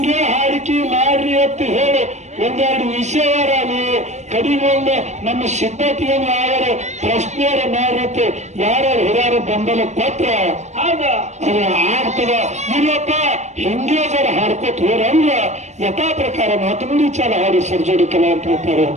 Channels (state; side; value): late; left; 0.33 ms